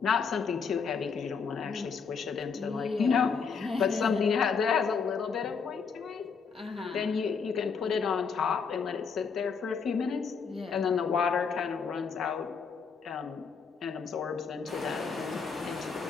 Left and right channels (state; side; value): quieter; right; 5.7 dB